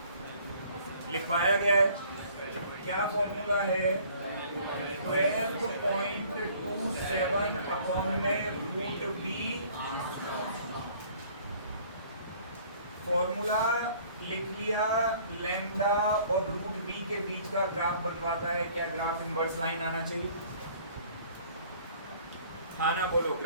लिखवाया गया है। क्या फॉर्मूला है? 12.27 अपॉन में रूट बी। फॉर्मूला लिख लिया, लैम्डा और रूट बी के बीच का ग्राफ बनवाता है। क्या ग्राफ इनवर्स लाइन आना चाहिए? हाँ ना बोलो,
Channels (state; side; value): inverted; both; correlation -0.55